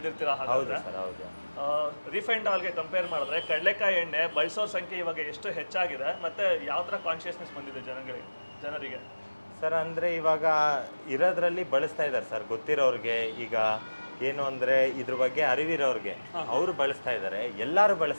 ಹಾಗಾದ್ರೆ ರಿಫೈನ್ಡ್ ಆಯಿಲ್ಗೆ ಕಂಪೇರ್ ಮಾಡಿದ್ರೆ ಕಡಲೆಕಾಯಿ ಎಣ್ಣೆ ಬಳಸೋರ ಸಂಖ್ಯೆ ಇವಾಗ ಎಷ್ಟು ಹೆಚ್ಚಾಗಿದೆ, ಮತ್ತೆ ಯಾವ ಥರ ಕಾನ್ಶಿಯಸ್ನೆಸ್ ಬಂದಿದೆ ಜನರಿಗೆ? ಸರ್ ಅಂದರೆ ಇವಾಗ ಇರೋದ್ರಲ್ಲಿ ಬಳಸ್ತಾ ಇದ್ದಾರೆ ಸರ್. ಗೊತ್ತಿರೋರಿಗೆ, ಈಗ ಏನು ಅಂದರೆ ಇದ್ರ ಬಗ್ಗೆ ಅರಿವಿರೋರಿಗೆ ಅವರು ಬಳಸ್ತಾ ಇದ್ದಾರೆ, ಎಲ್ಲರೂ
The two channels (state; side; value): inverted; both; correlation -1.00